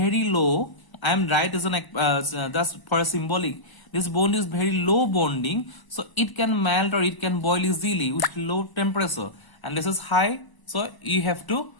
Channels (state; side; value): late; right; 1.0 ms